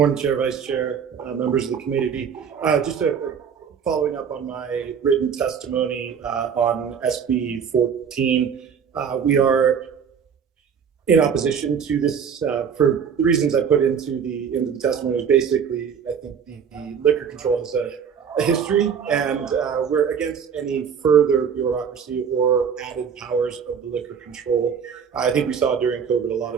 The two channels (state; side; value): quieter; left; 7.2 dB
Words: Chair, Vice Chair, members of the committee. Just following up on my written testimony on SB 14. We are in opposition to this for the reasons I put into the testimony. Is basically, I think the liquor control has a history, and we're against any further bureaucracy or added powers of the liquor control. I think we saw during COVID a lot